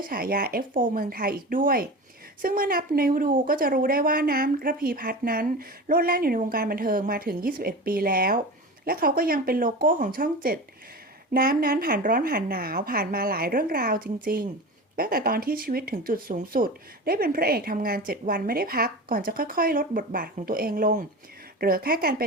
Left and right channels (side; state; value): both; normal; correlation 0.30